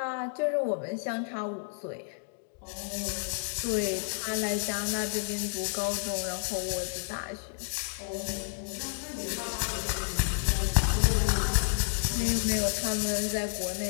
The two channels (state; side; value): silent; right; digital silence